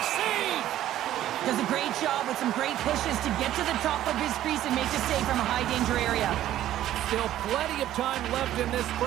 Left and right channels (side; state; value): left; quieter; 12.9 dB